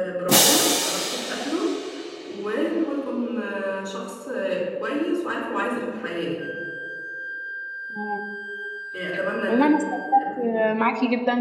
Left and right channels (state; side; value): identical; both; correlation 1.00